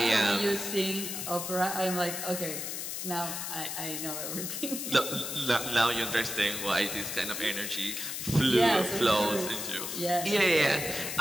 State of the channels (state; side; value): noise; left; hiss, 5 dB below the sound